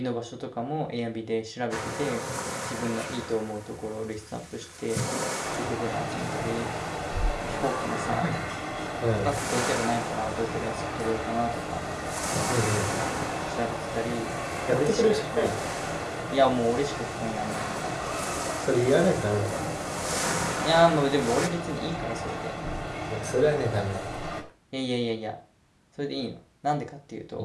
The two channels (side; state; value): both; identical; correlation 1.00